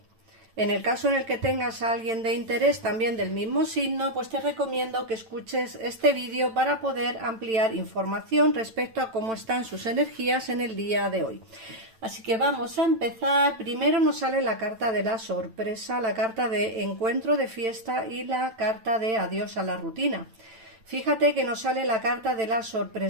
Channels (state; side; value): late; left; 9.0 ms